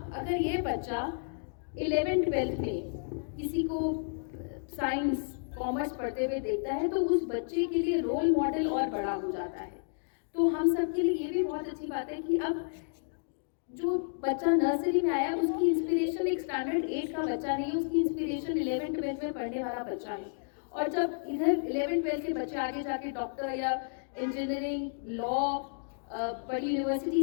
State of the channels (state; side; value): silent; right; digital silence